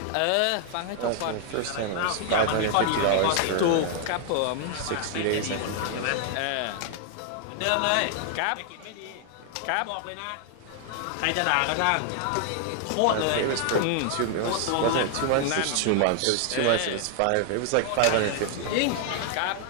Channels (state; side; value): different; both; correlation 0.00